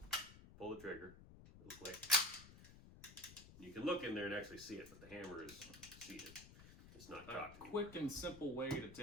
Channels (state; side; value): noise; left; rumble, 17 dB below the sound